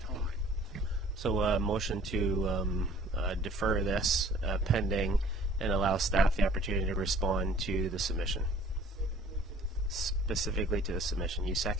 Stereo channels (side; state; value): both; normal; correlation 0.52